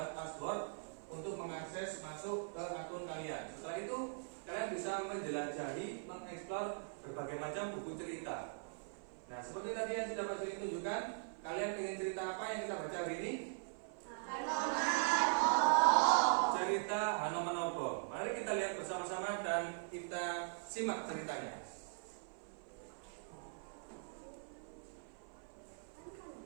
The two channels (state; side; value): silent; left; 50 dB below the other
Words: password untuk mengakses masuk ke akun kalian. Setelah itu kalian bisa menjelajahi, mengeksplor berbagai macam buku cerita. Nah, seperti tadi yang sudah Pak Juli tunjukkan, kalian ingin cerita apa yang kita baca hari ini? Cerita Hanomanobo. Mari kita lihat bersama-sama dan kita simak ceritanya.